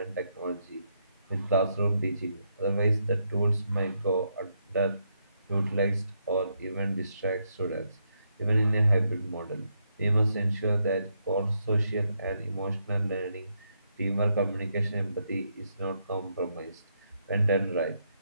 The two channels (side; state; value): both; inverted; correlation -0.79